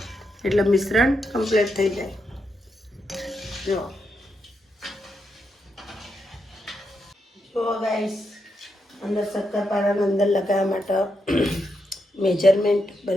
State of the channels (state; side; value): normal; both; correlation 0.83